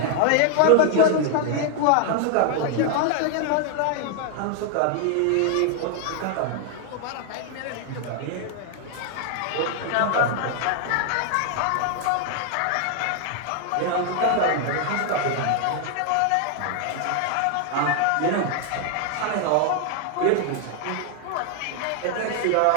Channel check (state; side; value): different; both; correlation 0.00